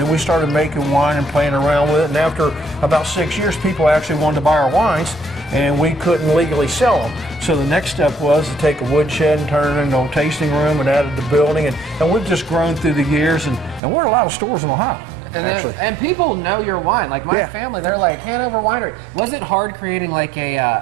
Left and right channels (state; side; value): drops out; left; at 13.8 s